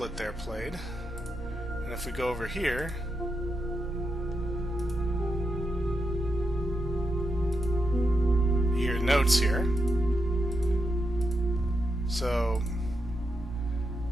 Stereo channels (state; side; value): normal; both; correlation 0.84